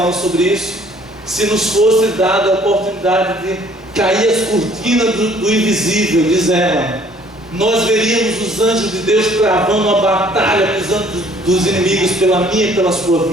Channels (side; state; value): both; normal; correlation 0.58